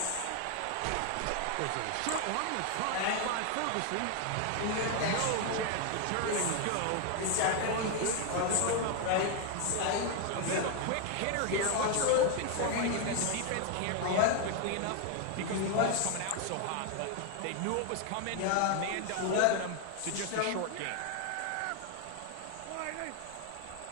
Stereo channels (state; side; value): different; both; correlation 0.01